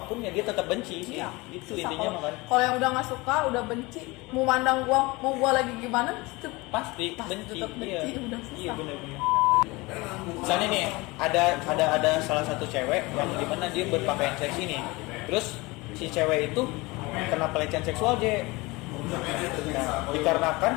ya dia tetap benci sih. Iya. Itu Susah intinya mah kan. Kalau yang udah nggak suka, udah benci, mau mandang mau gua lagi gimana, Pasti benci. tetap benci, udah susah. Iya benar-benar. Misalnya nih ada salah satu cewek yang dimana dia berpakaian seksi nih, terus si cewek itu kena pelecehan seksual J. Nah,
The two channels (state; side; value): quieter; right; 23.4 dB